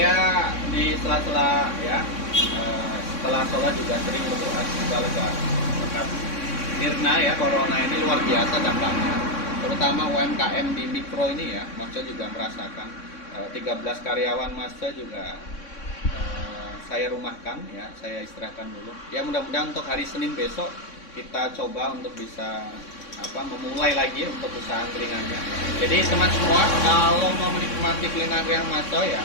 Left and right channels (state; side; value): late; right; 3.6 ms